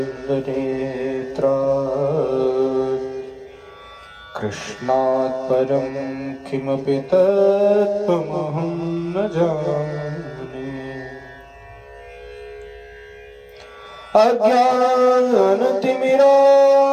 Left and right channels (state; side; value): identical; both; correlation 1.00